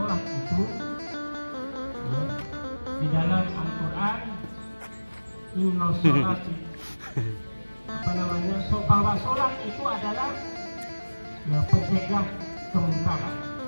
itu di dalam Al-Quran, inna sholati, bahwa sholat itu adalah pencegah kemungkaran.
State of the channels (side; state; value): both; inverted; correlation -1.00